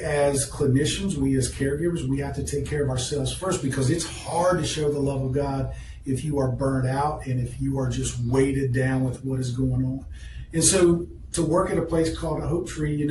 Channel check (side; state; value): both; identical; correlation 1.00